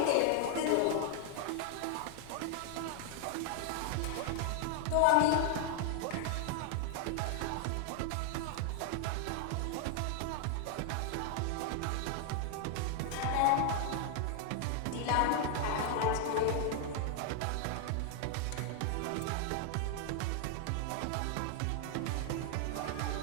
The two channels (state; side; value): different; both; correlation 0.00